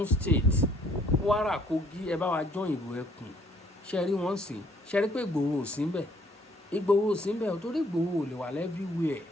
state, Kwara, Kogi, ẹ bá wa jọ́ ìrò ẹkùn. Ṣe rí wọ́n sìn, ṣe rí pé Ìgbòho ò sí ńbẹ̀, Ìgbòho ò sí ńbẹ̀ torí Ìgbòho ò lè wà everywhere,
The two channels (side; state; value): both; normal; correlation 0.62